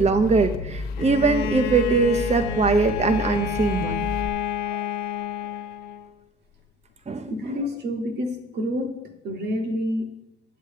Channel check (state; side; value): normal; both; correlation 0.49